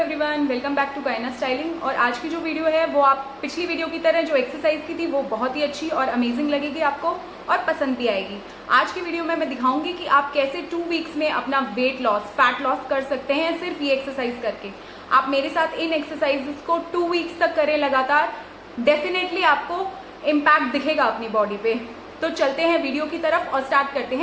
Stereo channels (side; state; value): both; identical; correlation 1.00